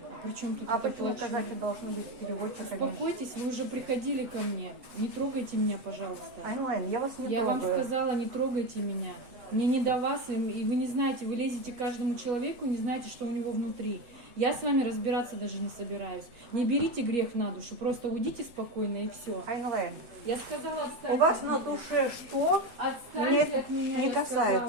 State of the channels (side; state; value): left; late; 8.0 ms